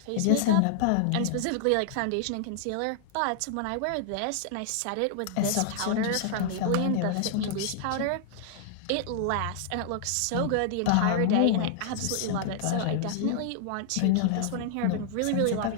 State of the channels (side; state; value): both; different; correlation -0.01